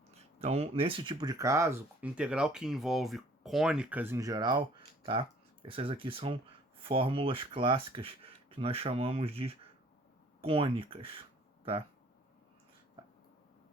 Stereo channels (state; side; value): normal; both; correlation 0.56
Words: Então, nesse tipo de caso, integral que envolve cônicas em geral, tá? Essas aqui são fórmulas clássicas que nós chamamos de cônicas, tá?